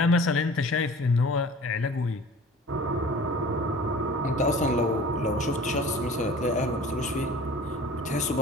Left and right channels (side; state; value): both; normal; correlation 0.44